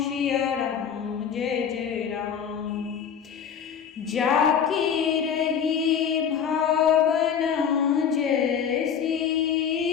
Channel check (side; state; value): right; quieter; 7.6 dB